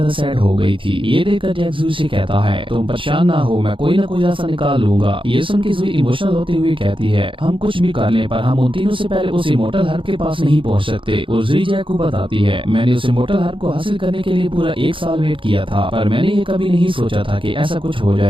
सैड हो गई थी। ये देखकर जैक जुई से कहता है तुम परेशान ना हो, मैं कोई ना कोई रास्ता निकाल लूंगा। ये सुन के जुई इमोशनल होते हुए कहती है हम कुछ भी कर लें पर हम उन तीनों से पहले उस इमोर्टल हार्प के पास नहीं पहुँच सकते। और जुई जैक को बताती है मैंने उस इमोर्टल हार्प को हासिल करने के लिए पूरा 1 साल वेट किया था, पर मैंने ये कभी नहीं सोचा था कि ऐसा कुछ हो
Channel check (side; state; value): left; late; 0.25 ms